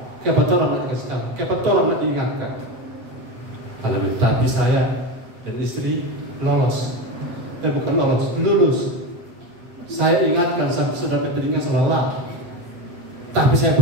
Kenapa orang nak dikasih tahu? Kenapa orang nak diingatkan? Haleluya. Tapi saya dan istri lolos. Bukan lolos, lulus. Saya ingatkan sampai sudah telinga selalu. Tapi saya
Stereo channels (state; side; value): late; left; 8.4 ms